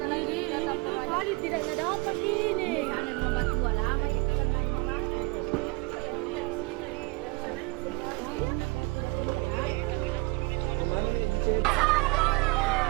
lagi datang kali tidak dapat ini. Ada nomor 2 lama itu kan lain orang. Kemana nih dicet?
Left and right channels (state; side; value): quieter; left; 25.2 dB